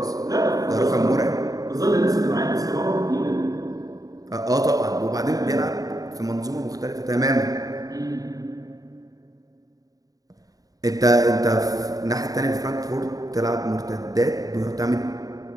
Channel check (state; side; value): late; left; 0.18 ms